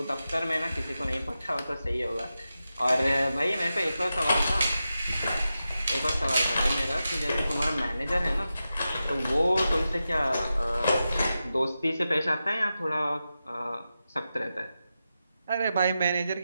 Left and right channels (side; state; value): both; inverted; correlation -0.91